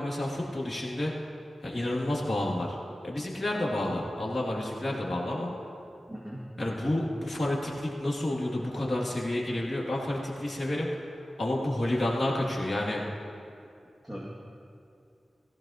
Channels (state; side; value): normal; both; correlation 0.95